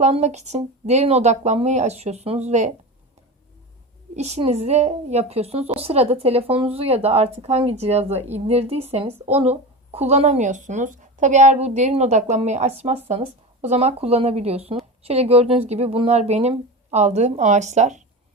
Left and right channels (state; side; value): normal; both; correlation 0.26